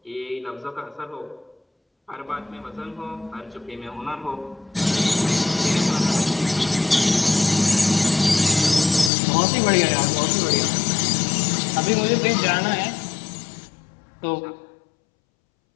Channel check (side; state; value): right; drops out; at 9.1 s